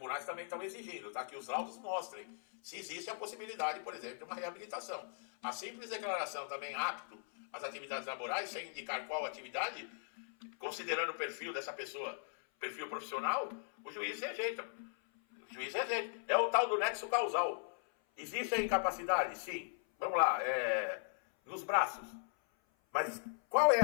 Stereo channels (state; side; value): silent; right; 52 dB below the other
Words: também estão exigindo, tá? Que os laudos mostrem se existe a possibilidade, por exemplo, de uma reabilitação. A simples declaração também apto às atividades laborais, sem indicar qual atividade, considerando o perfil dessa pessoa, perfil profissional, o juiz rejeita. O juiz rejeita. É o tal do nexo causal. Existe a incapacidade? Sim. Vamos lá, nos braços. Mas qual é